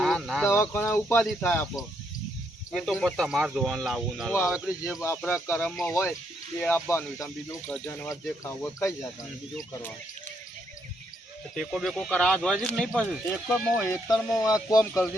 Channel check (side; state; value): both; normal; correlation 0.75